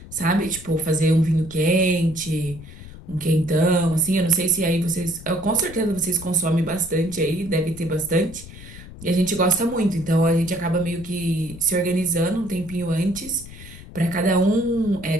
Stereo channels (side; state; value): left; noise; rumble, 16 dB below the sound